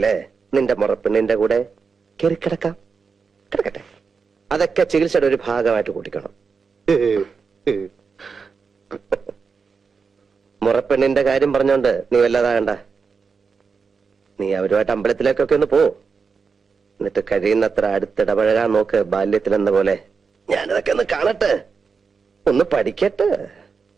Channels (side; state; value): left; quieter; 5.3 dB